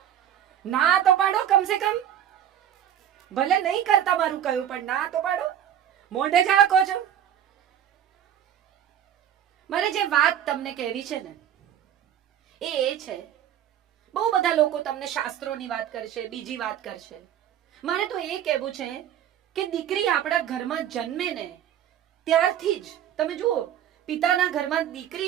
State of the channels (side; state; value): left; quieter; 10.2 dB